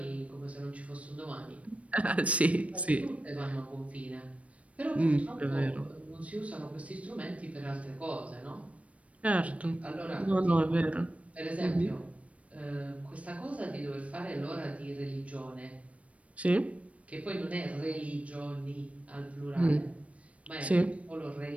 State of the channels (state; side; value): late; left; 0.065 ms